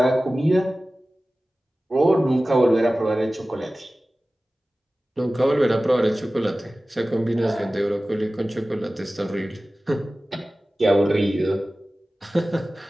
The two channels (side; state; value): both; normal; correlation 0.96